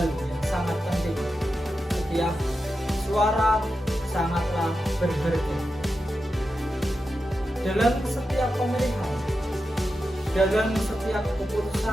yang sangat penting: setiap suara sangatlah berharga. Dalam setiap pemilihan, dalam setiap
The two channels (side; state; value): both; normal; correlation 0.90